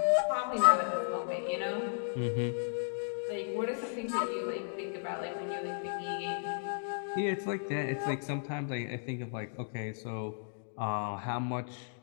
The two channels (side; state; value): right; silent; digital silence